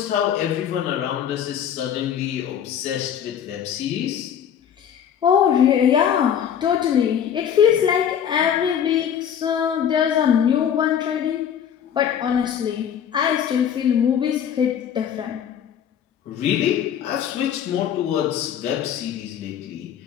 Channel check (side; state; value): right; quieter; 8.9 dB